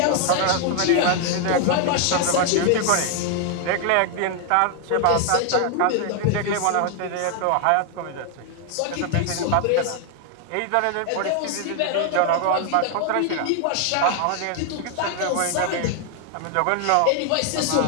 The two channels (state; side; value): different; both; correlation 0.00